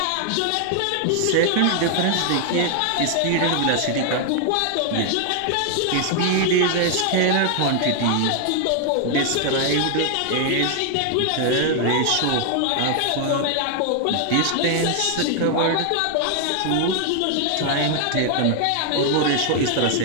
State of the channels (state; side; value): different; both; correlation 0.00